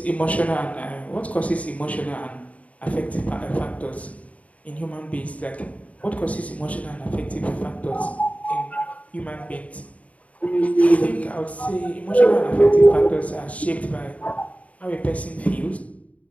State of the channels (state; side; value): late; right; 0.068 ms